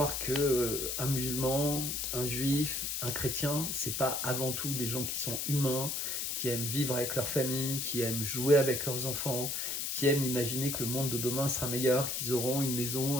que un musulman, un juif, un chrétien, c'est pas avant tout des gens qui sont humains, qui aiment vivre avec leur famille, qui aiment jouer avec leurs enfants, qui aiment imaginer que le monde de demain sera meilleur, qu'ils auront une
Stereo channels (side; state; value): left; noise; hiss, 1 dB below the sound